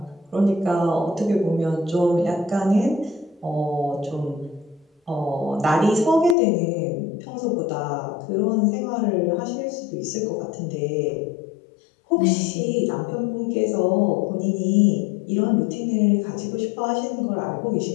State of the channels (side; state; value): right; drops out; at 6.4 s